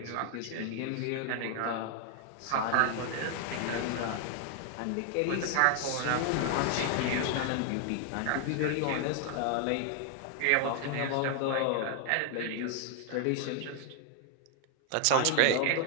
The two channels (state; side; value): different; both; correlation 0.00